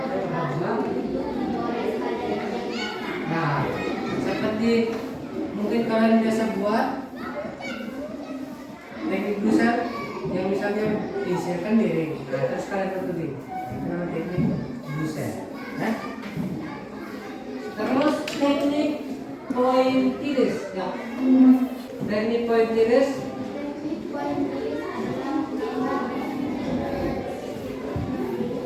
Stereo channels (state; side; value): identical; both; correlation 1.00